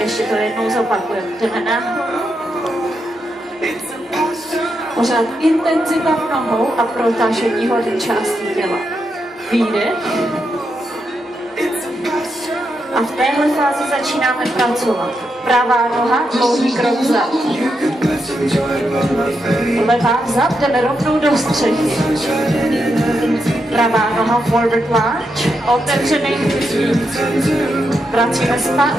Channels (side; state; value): both; normal; correlation 0.84